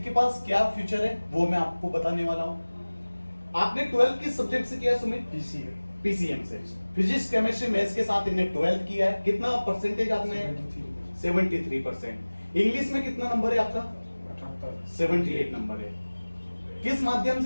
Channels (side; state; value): both; inverted; correlation -1.00